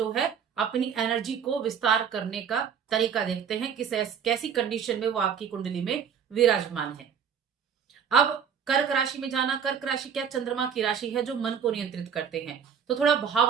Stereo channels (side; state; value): left; quieter; 7.4 dB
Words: है अपनी एनर्जी को विस्तार करने का तरीका देखते हैं, कैसी कंडीशन में वो आपकी कुंडली में विराजमान है। अब कर्क राशि में जाना, कर्क राशि क्या चंद्रमा की राशि है जो मन को नियंत्रित करते हैं, तो थोड़ा